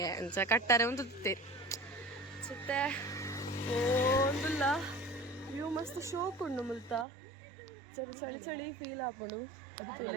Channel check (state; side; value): drops out; left; at 7.1 s